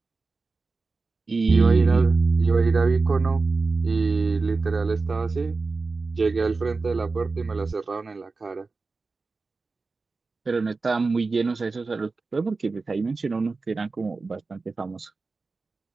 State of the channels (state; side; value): quieter; left; 4.0 dB